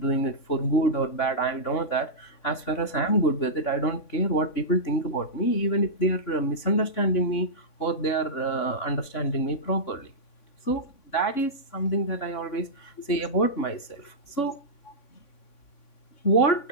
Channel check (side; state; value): right; late; 3.5 ms